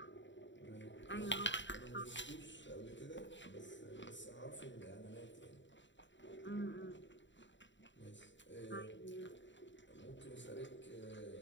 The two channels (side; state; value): right; late; 0.54 ms